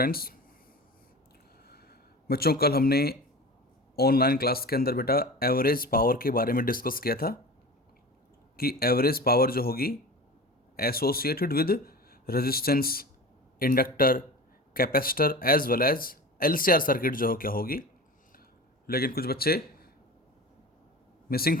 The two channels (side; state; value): both; normal; correlation 0.34